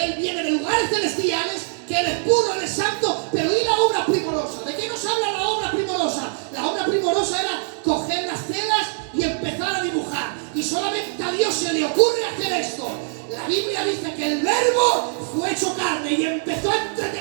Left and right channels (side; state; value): left; silent; 64 dB below the other